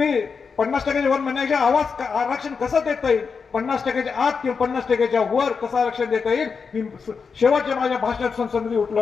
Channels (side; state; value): right; quieter; 5.5 dB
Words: 50%च्या वर म्हणण्याच्या आवाज आरक्षण कसं देता येईल, 50%च्या आत किंवा 50%च्या वर कसं आरक्षण देता येईल. मी शेवटच्या माझ्या भाषणात संसदेमध्ये